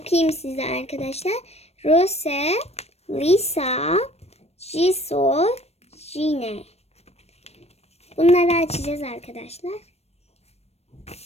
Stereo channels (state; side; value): late; right; 0.31 ms